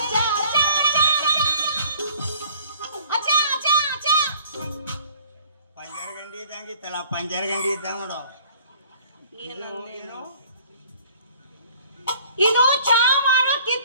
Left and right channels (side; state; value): both; inverted; correlation -0.54